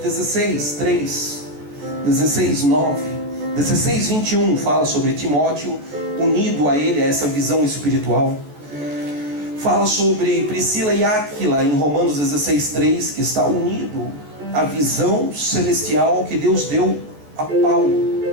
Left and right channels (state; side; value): late; left; 14 ms